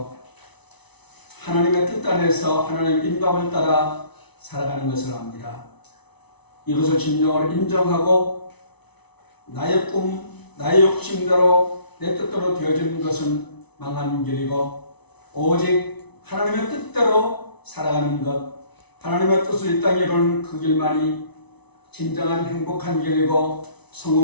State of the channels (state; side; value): late; right; 0.99 ms